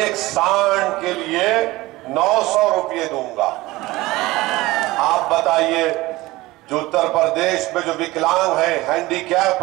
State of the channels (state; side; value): quieter; left; 19.4 dB